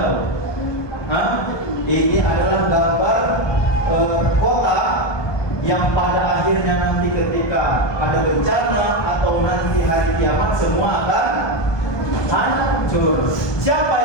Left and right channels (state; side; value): late; right; 1.2 ms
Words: Ini adalah gambar kota yang pada akhirnya nanti ketika ada bencana atau nanti hari kiamat semua akan hancur. Siapa